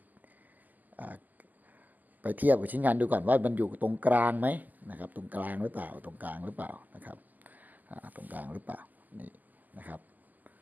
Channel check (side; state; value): left; late; 0.083 ms